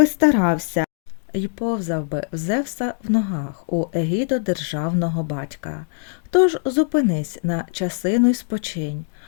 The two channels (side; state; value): right; silent; digital silence